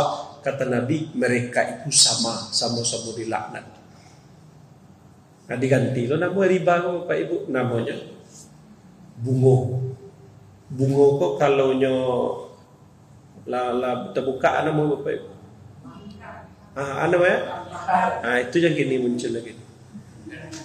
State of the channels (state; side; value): identical; both; correlation 1.00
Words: Kata Nabi, mereka itu sama-sama dilaknat. Nah diganti lo nama riba Bapak Ibu, namanya bungo. Bungo kok kalau terbuka nama Bapak Ibu. Apa ya? Itu yang kini muncul lagi.